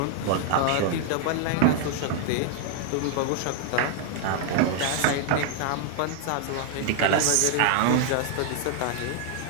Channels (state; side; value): different; both; correlation 0.00